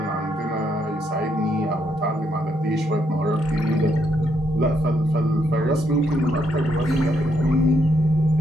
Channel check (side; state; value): both; normal; correlation 0.76